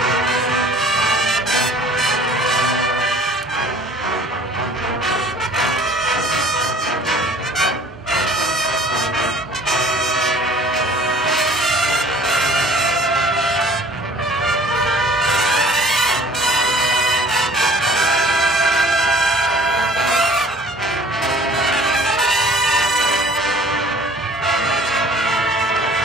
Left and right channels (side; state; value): both; normal; correlation 0.50